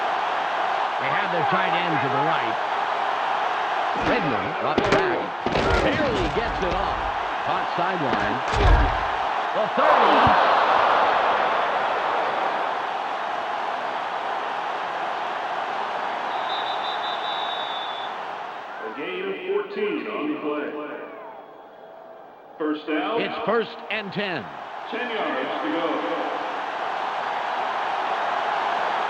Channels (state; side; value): identical; both; correlation 1.00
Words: They have their tight end to the right. Redmond drops back. Barely gets it off. Caught sideline. The 30. On the play. First down. It's first and 10. 10 yards to go.